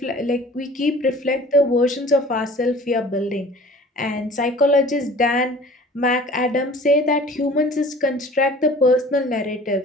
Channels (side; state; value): both; normal; correlation 0.46